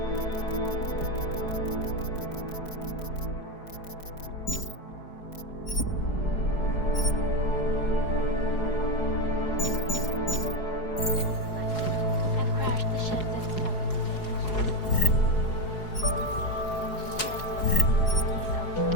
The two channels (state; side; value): late; right; 4.7 ms